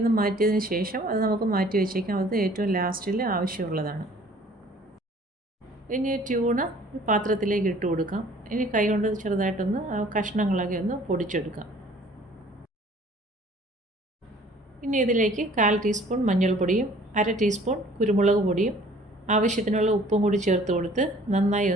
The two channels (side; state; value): both; normal; correlation 0.53